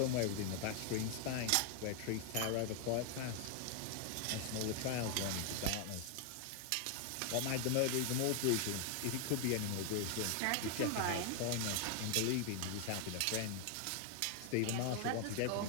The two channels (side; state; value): both; different; correlation 0.00